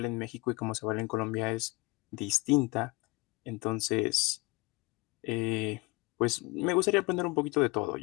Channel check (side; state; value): right; quieter; 24.6 dB